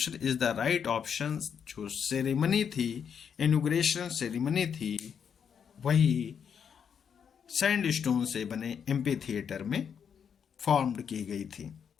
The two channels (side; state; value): right; quieter; 7.4 dB